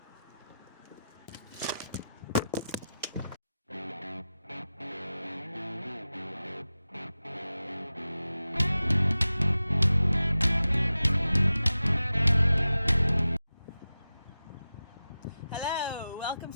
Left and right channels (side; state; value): both; inverted; correlation -0.93